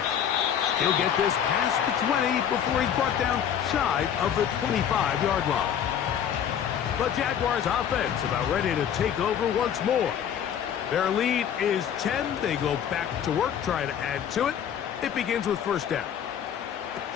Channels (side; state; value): right; quieter; 8.9 dB